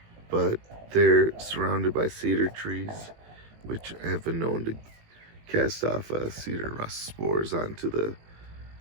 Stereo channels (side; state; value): left; late; 18 ms